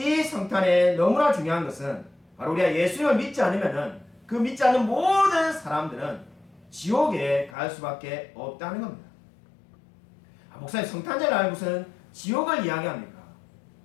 성탄에 너무나 중요한 것은 바로 우리가 예수님을 믿지 않으면은 그 믿지 않는 모든 사람들은 지옥에 갈 수밖에 없다는 겁니다. 목사님 성탄절 날 무슨 지옥을 이야기합니까?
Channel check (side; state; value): right; drops out; at 7.5 s